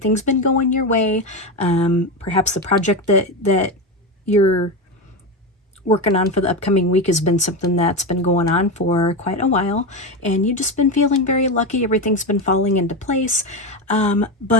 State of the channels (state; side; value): normal; both; correlation 0.16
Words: been going your way. Perhaps the project that you're working on for the upcoming week has been something that's been going on for quite a while, and you've just been feeling very lucky. Everything's been falling into place.